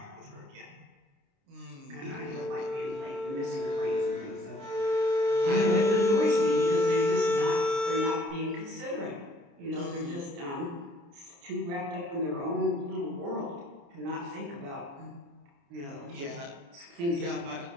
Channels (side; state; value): left; late; 29 ms